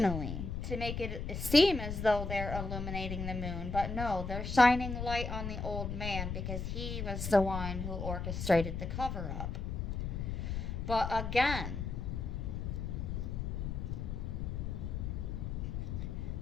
to make it seem as though they're illuminating the moon, but no, they're shining light on the old man because he was the one who orchestrated the cover-up. But again,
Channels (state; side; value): noise; left; rumble, 3 dB below the sound